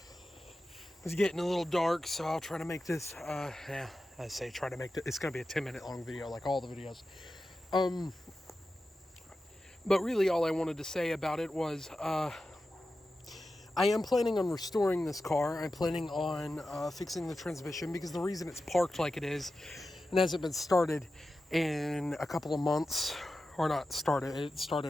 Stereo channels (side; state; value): both; normal; correlation 0.92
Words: It's getting a little dark, so I'll try to make this, try to make it, it's going to be a 10-minute long video like all the videos. But really all I wanted to say about it was, I am planning on restoring this car. I'm planning on fixing the transmission, because the reason it's parked like it is and hasn't been started in a couple of months, or not started, it